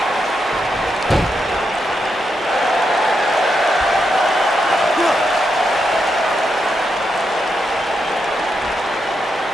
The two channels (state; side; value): normal; both; correlation 0.83